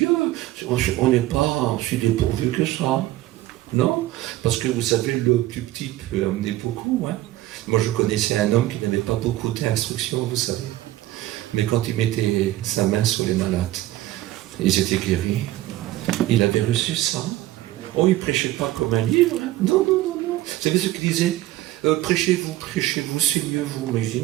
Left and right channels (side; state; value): left; quieter; 15.9 dB